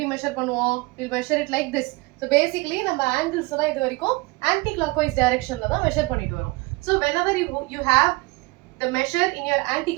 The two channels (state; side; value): quieter; left; 23.9 dB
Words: measure பண்ணுவோம்? We'll measure it like this. So basically நம்ம angles தான் இது வரைக்கும் anti-clockwise directionல தான் measure பண்ணிட்டு வரோம். So whenever you have the measure in your